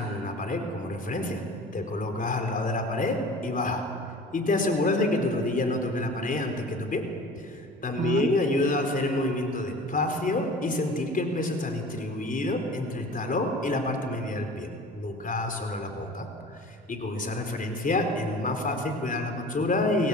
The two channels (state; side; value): normal; both; correlation 0.41